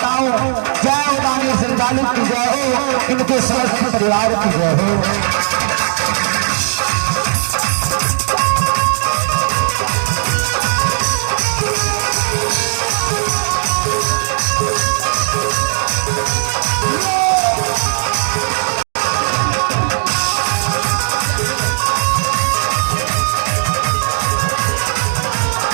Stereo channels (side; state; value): left; silent; digital silence